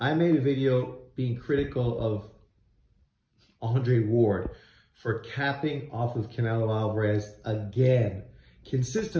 made a video being critical of Andre Ward for capping off of Canelo Alvarez again.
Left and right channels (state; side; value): identical; both; correlation 1.00